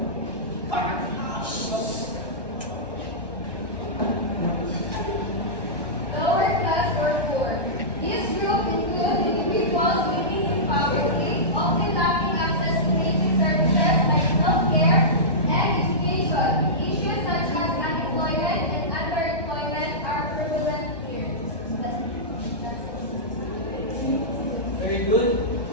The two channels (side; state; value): right; late; 1.1 ms